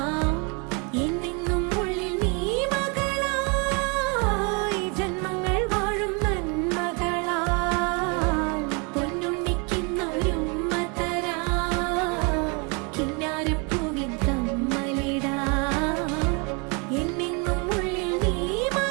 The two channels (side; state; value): left; quieter; 32.7 dB